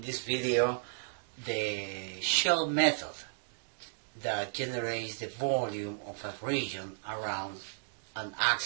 this video the shell method that generates the volume of a region around an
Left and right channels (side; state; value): left; silent; digital silence